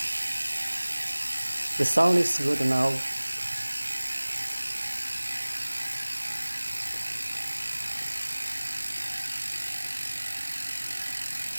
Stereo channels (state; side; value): inverted; both; correlation -1.00